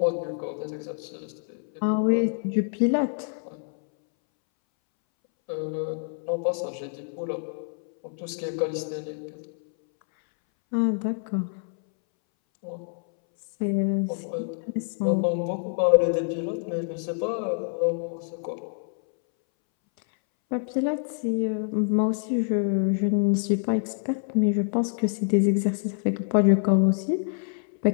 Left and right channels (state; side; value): silent; right; 61 dB below the other